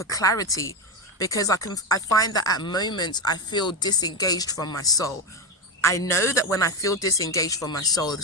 clarity, because I find that at moments I feel disengaged from my soul. I know that when I feel disengaged from my soul,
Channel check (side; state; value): both; normal; correlation 0.12